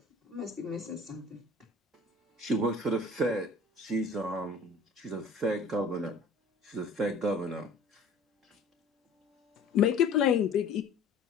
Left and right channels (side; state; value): right; quieter; 3.3 dB